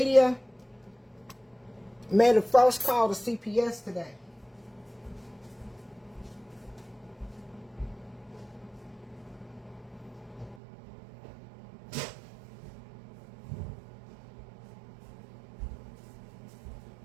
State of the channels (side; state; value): left; drops out; at 10.6 s